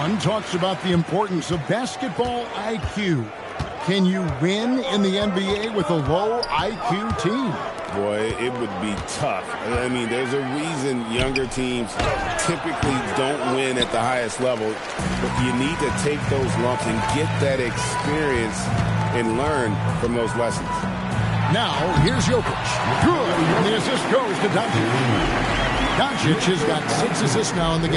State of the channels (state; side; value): identical; both; correlation 1.00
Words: talks about the importance of basketball IQ. Can you win in the NBA with a low IQ team? Boy, it would be tough. I mean, there's a reason younger teams typically don't win at the highest level. But you need to take those lumps and get that experience and learn from those lessons. Now, here's Jokic. Good. And the assist goes to Doncic. Doncic has got 6 assists now in the